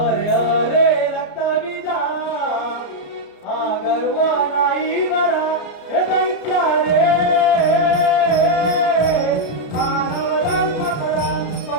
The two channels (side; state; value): right; late; 33 ms